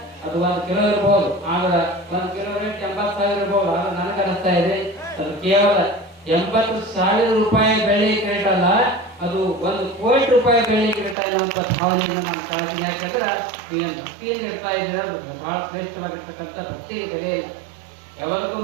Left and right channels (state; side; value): drops out; left; at 11.2 s